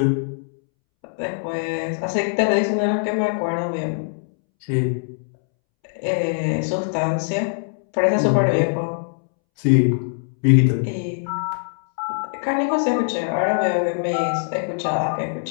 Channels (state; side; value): silent; right; 64 dB below the other